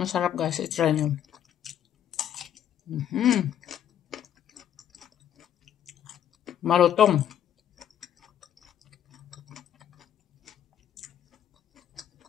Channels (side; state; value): right; quieter; 10.1 dB